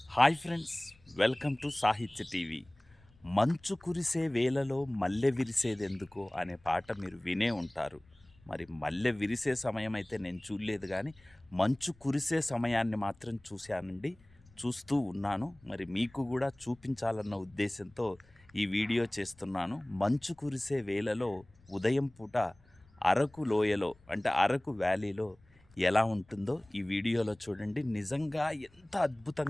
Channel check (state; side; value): noise; left; rumble, 29 dB below the sound